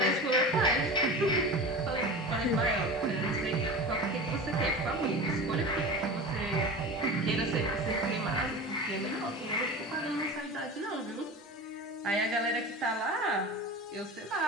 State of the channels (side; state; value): both; normal; correlation 0.31